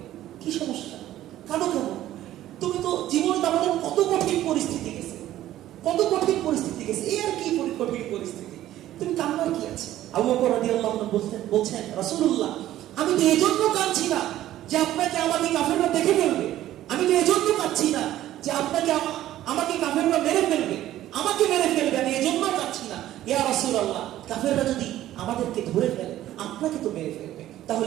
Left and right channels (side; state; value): left; quieter; 13.5 dB